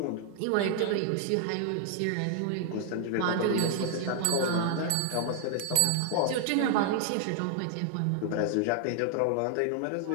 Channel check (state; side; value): different; both; correlation 0.00